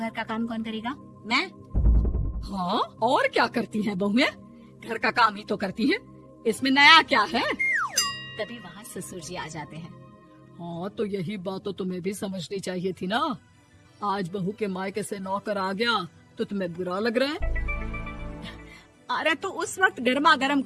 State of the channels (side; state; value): both; identical; correlation 1.00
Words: का काम कौन करेगा? मैं। हाँ, और क्या करती हैं बहुएं? घर का काम ही तो करती हैं, इसमें नया क्या है? तभी वहाँ ससुर जी आ जाते हैं। हाँ, तो यही बात तो तुम्हें भी समझनी चाहिए थी ना। आज बहू के मायके से नौकर आ गया तो तुम्हें बुरा लग रहा है? अरे तो उस वक्त गर्मा गर्म